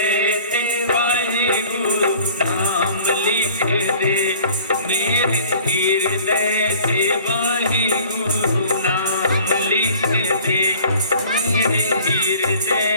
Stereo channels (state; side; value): inverted; both; correlation -0.49